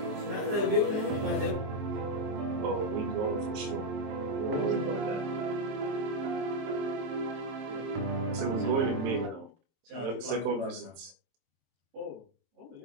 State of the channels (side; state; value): left; late; 23 ms